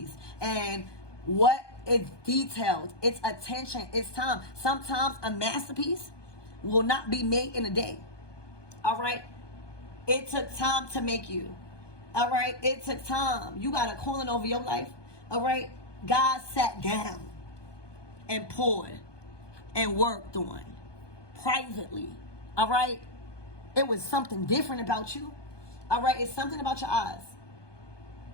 and what it's detailed, it's attention, it's time. Sometimes a masterpiece will not be made in a day. All right, it took time to make you. All right, it took time. You got a calling over your life. All right, God sat down and poured and worked on privately. All right, it was something different about you. All right, it's something about your eyes.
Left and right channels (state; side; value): late; right; 1.2 ms